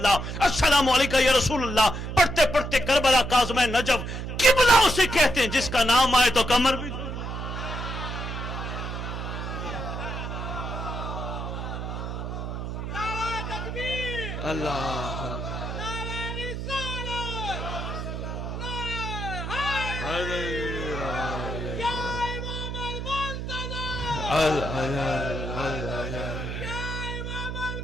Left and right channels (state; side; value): noise; right; hum, 5 dB below the sound